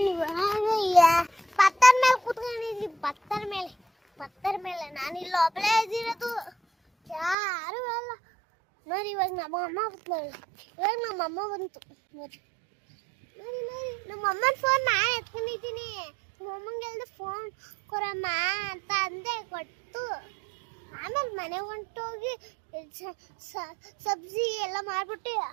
ಪತ್ತರ ಮೇಲೆ ಕೂತ್ಕೊಂಡಿದ್ವಿ, ಪತ್ತರ ಮೇಲೆ ನಾನಿಲ್ಲ ಒಬ್ಬಳೇ ಇದ್ದಿರೋದು, ಯಾರು ಅಲ್ಲ ನೋಡಿ. ಇವಾಗ ನಮ್ಮ ಅಮ್ಮ ಬಂತು ನೋಡಿ. ನಮ್ಮ ಅಮ್ಮನ ಫೋನ್ ನಾನು ಎತ್ಕೊಂಡಿದ್ದೀನಿ. ನಮ್ಮ ಅಮ್ಮಂಗೆ ಹೇಳ್ದೆ ಫೋನ್ ಕೊಡಮ್ಮ ಅಂತ ಅಂದೆ, ಕೊಟ್ಟು ಆಮೇಲೆ ಮನೆಗೆ ಹೊಂಟೋಗಿ ಸಬ್ಜಿ ಎಲ್ಲ ಮಾಡ್ಬಿಟ್ಟು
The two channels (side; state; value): left; drops out; at 7.4 s